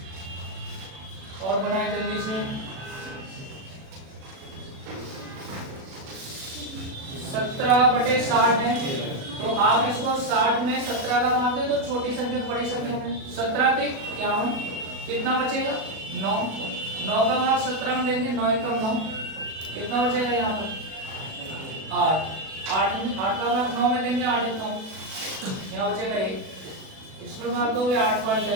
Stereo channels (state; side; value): late; left; 37 ms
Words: और बनाए जल्दी से। 17/60 है तो आप इसको 60 में 17 का भाग दे दो, छोटी संख्या बड़ी संख्या में। 17 पे 51, कितना बचेगा 9, 9 का भाग 17 में देंगे 9 × 9, कितना बचेगा यहाँ पर 8, 8 का भाग 9 में देंगे 8 × 9, यहाँ बचेगा 1, इसमें भाग दोगे 8 बार